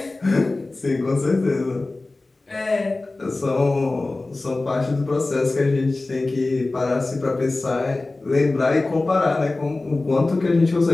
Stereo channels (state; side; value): quieter; right; 3.2 dB